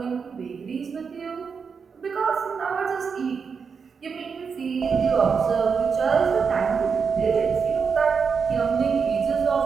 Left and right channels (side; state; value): left; quieter; 5.8 dB